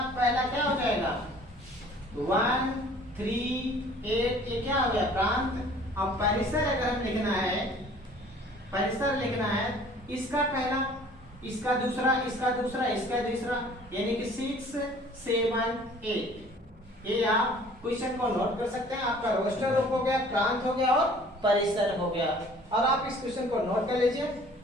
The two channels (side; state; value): both; normal; correlation 0.52